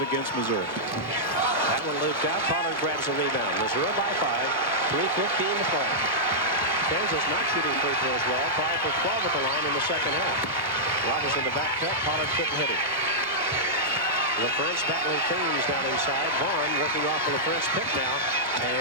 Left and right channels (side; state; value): both; normal; correlation -0.10